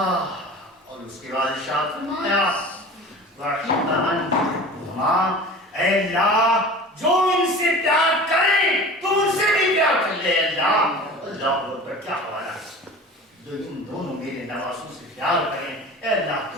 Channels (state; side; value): normal; both; correlation 0.38